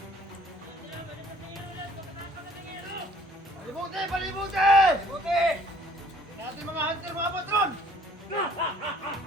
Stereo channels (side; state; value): both; normal; correlation 0.57